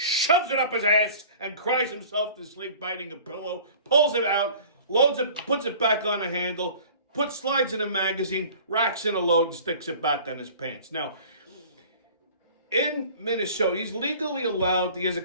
it up his ass, and cries himself to sleep biting a pillow, pulls it out, loads it, puts it back on the handle, slides in a magazine, racks in a load, and sticks it back on his pants. Now, in Minnesota, he's legally allowed, he has a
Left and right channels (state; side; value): inverted; both; correlation -0.46